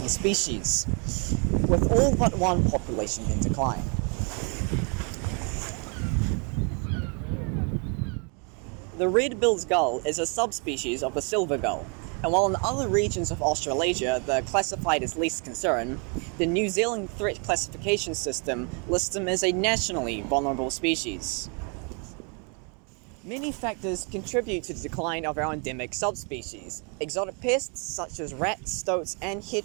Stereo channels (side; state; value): left; quieter; 37.0 dB